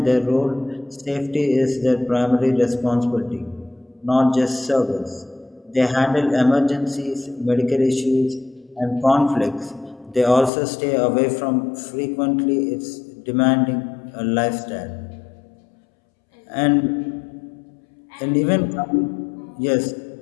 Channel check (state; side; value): drops out; right; at 10.5 s